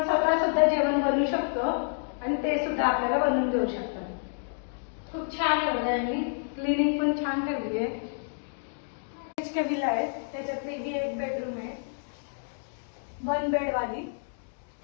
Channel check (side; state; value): right; silent; digital silence